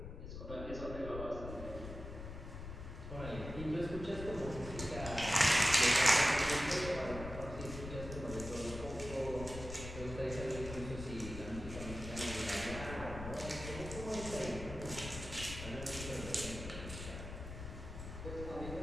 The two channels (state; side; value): noise; left; rumble, 9 dB below the sound